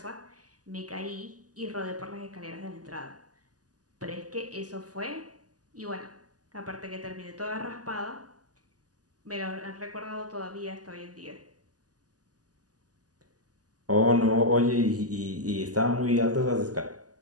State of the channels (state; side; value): late; left; 0.67 ms